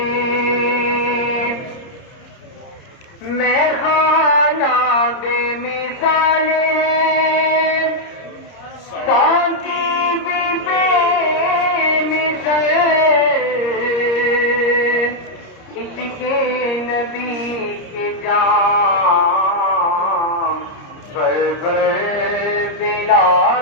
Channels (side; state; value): right; late; 30 ms